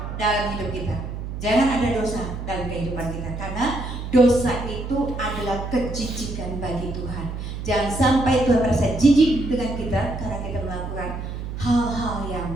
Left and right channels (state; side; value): noise; right; hum, 7 dB below the sound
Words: dalam hidup kita. Jangan ada dosa dalam kehidupan kita, karena dosa itu adalah kejijikan bagi Tuhan. Jangan sampai Tuhan merasa jijik dengan kita karena kita melakukan hal-hal